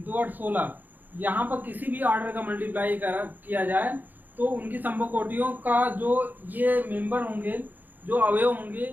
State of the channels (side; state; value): left; late; 0.086 ms